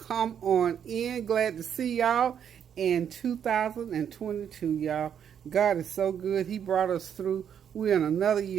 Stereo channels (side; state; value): left; quieter; 8.5 dB